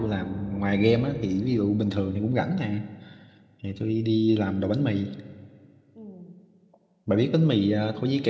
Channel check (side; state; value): both; identical; correlation 1.00